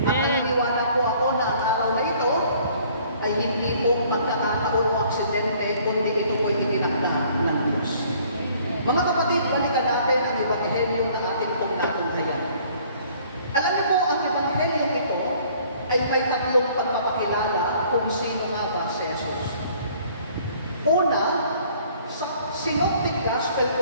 At naniniwala po ako na ang araw na ito ay hindi po magkakataon o aksidente, kundi ito po ay itinakda ng Diyos. Mga kapatid, balikan natin ang ebanghelyo na ating pong natunghayan. Alam niyo po, ang ebanghelyo ito ay may tatlong pagpapakilala kung sino nga ba si Jesus. Una, sa Synoptic Gospel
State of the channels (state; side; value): inverted; both; correlation -0.57